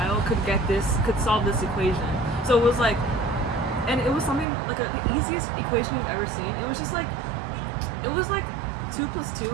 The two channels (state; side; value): drops out; left; at 4.5 s